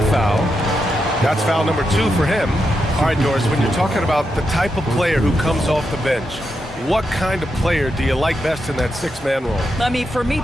foul. That's foul number 2 for him. All right, Doris, when you're talking about the type of player who comes off the bench, what kind of player do you like best in that six-man role? I mean, for me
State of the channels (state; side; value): normal; both; correlation 0.85